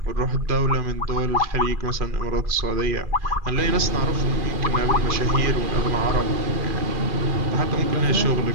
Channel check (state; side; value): late; left; 2.4 ms